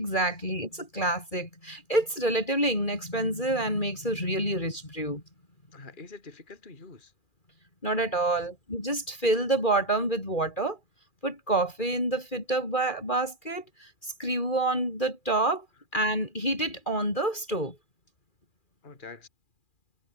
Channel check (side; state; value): right; late; 2.4 ms